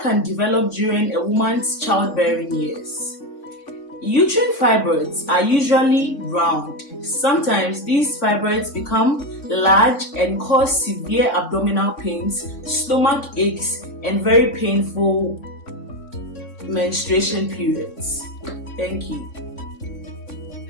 can develop during a woman's childbearing years. Uterine fibroids are usually round. Sometimes these fibroids become large and cause severe abdominal pains, stomach aches, and very painful menstruation periods. Thank you.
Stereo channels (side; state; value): right; late; 3.6 ms